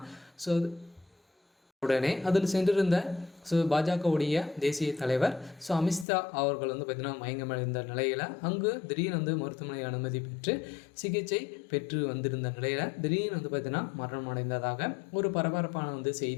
உடனே அதில் சென்றிருந்த பாஜகவுடைய தேசிய தலைவர் அமித்ஷா அவர்கள் பார்த்திங்கன்னா மயங்கமடைந்த நிலையில் அங்கு திடீர்னு மருத்துவமனை அனுமதி பெற்று சிகிச்சை பெற்று வந்திருந்த நிலையில் திடீர்னு பார்த்திங்கன்னா மரணம் அடைந்ததாக ஒரு பரபரப்பான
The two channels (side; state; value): right; drops out; at 6.1 s